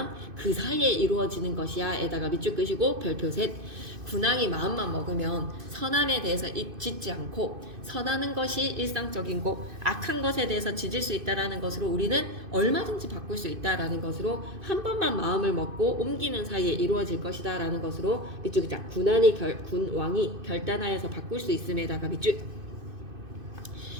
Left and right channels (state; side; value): late; left; 2.5 ms